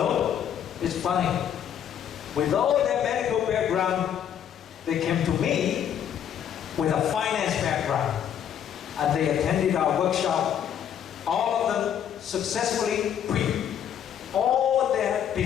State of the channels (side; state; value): right; quieter; 9.3 dB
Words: it's funny. With all their medical background, they came to me with a finance background. And they attended our workshop. All of them successfully quit all their